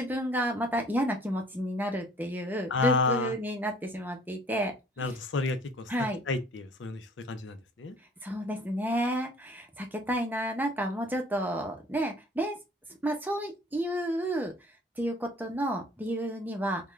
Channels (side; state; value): both; normal; correlation 0.54